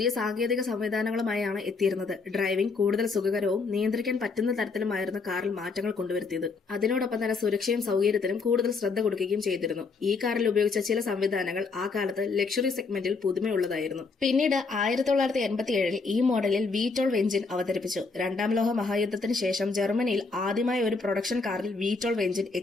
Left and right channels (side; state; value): right; quieter; 4.4 dB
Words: സാങ്കേതിക സംവിധാനങ്ങളുമായാണ് എത്തിയിരുന്നത്. ഡ്രൈവിംഗ് കൂടുതൽ സുഖകരവും നിയന്ത്രിക്കാൻ പറ്റുന്ന തരത്തിലുമായിരുന്നു കാറിൽ മാറ്റങ്ങൾ കൊണ്ടുവരുത്തിയത്. അതിനോടൊപ്പം തന്നെ സുരക്ഷയും സൗകര്യത്തിനും കൂടുതൽ ശ്രദ്ധ കൊടുക്കുകയും ചെയ്തിരുന്നു. ഈ കാറിൽ ഉപയോഗിച്ച ചില സംവിധാനങ്ങൾ ആ കാലത്ത് ലക്ഷറി സെഗ്മെന്റിൽ പുതുമയുള്ളതായിരുന്നു. പിന്നീട് 1987 ഈ മോഡലിൽ V12 എഞ്ചിൻ അവതരിപ്പിച്ചു. രണ്ടാം ലോക മഹായുദ്ധത്തിന് ശേഷം ജർമ്മനിയിൽ ആദ്യമായി ഒരു പ്രൊഡക്ഷൻ കാറിൽ V12 എഞ്ചിൻ